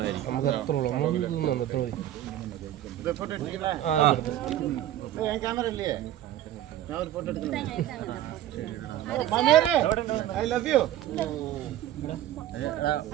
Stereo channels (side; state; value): left; quieter; 12.6 dB